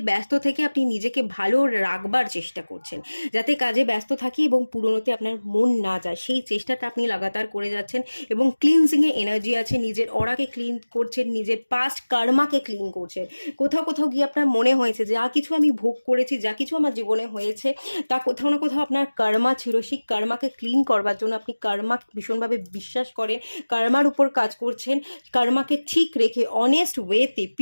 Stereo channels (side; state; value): both; inverted; correlation -1.00